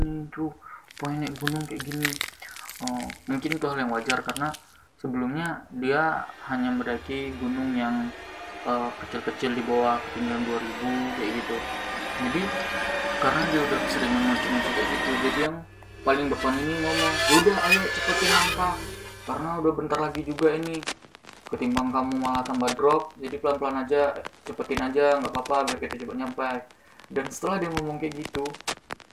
tuh, pengen naik gunung kayak gini. Oh, mungkin itu hal yang wajar karena sebelumnya dia hanya mendaki gunung yang kecil-kecil di bawah ketinggian 2000 kayak gitu. Jadi karena dia udah sering ngoceh-ngoceh kayak gitu, jadi yang paling depan ini ngomong, udah ayo cepetin langkah karena udah bentar lagi juga ini, ketimbang kamu malah tambah drop, jadi pelan-pelan aja, cepetin aja, nggak apa-apa biar kita cepet nyampe. Dan setelah dia ngomong kayak gitu,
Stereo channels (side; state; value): both; identical; correlation 1.00